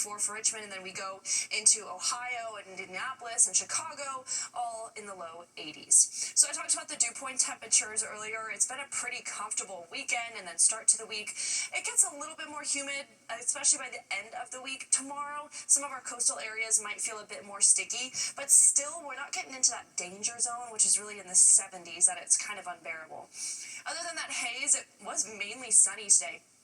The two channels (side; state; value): both; identical; correlation 1.00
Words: for Richmond, and then we go into Ohio and Indianapolis and Chicago, all in the low 80s. So I talked about the dew point temperatures earlier. It's been a pretty comfortable weekend, and then start to the week. It gets a little bit more humid, especially by the end of the week. Tomorrow, some of our coastal areas might feel a bit more sticky, but still, we're not getting into that danger zone, which is really in the 70s, that it's kind of unbearable. Other than that haze, it was mainly sunny today.